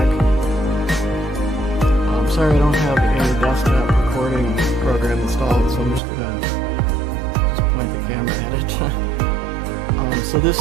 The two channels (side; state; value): left; drops out; at 6.0 s